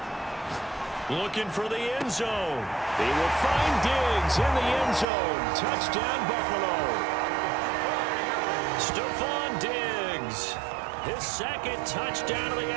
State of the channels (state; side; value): drops out; left; at 5.1 s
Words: Looking for the end zone. He will find Diggs in the end zone. Touchdown, Buffalo. Stephon Diggs. His second touchdown of the